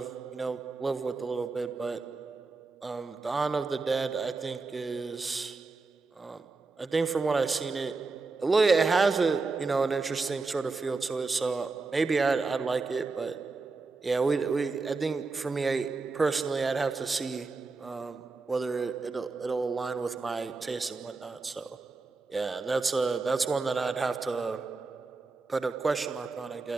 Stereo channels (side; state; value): left; quieter; 4.0 dB